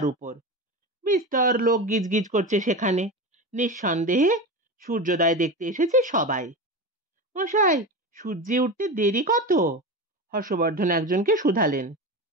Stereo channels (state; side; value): normal; both; correlation 0.24